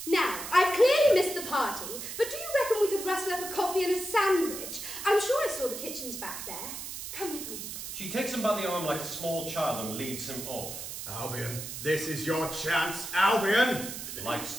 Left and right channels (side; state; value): right; noise; hiss, 8 dB below the sound